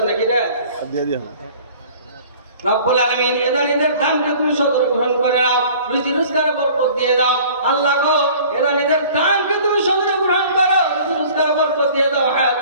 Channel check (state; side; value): inverted; both; correlation -0.48